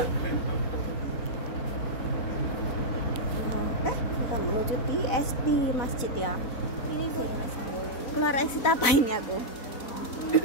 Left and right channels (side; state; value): right; late; 4.0 ms